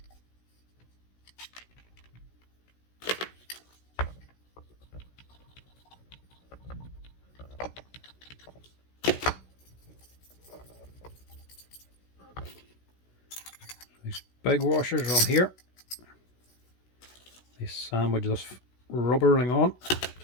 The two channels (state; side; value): late; right; 16 ms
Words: These big washers are on here. They sandwich this rubber ring on.